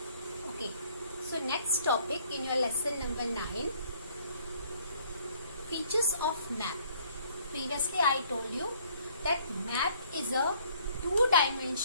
Okay, so next topic in your lesson number 9, features of map. Previously I told you that map is a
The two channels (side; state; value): both; inverted; correlation -0.62